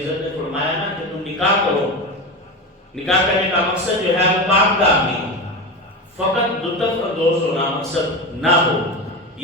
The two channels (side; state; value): both; normal; correlation 0.22